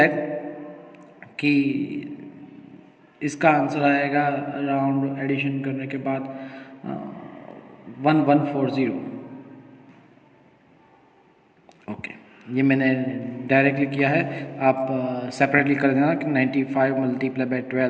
कि इसका आंसर आएगा अराउंड एडिशन करने के बाद 1140। ओके, ये मैंने डायरेक्टली किया है, आप सेपरेटली कर देना कि 95 मल्टीप्लाई बाय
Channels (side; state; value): both; identical; correlation 1.00